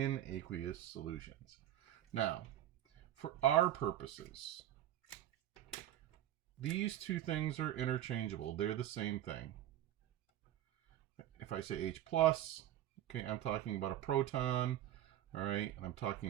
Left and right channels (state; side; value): quieter; left; 12.5 dB